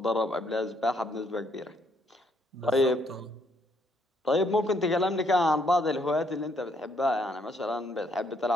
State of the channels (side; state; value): both; normal; correlation 0.70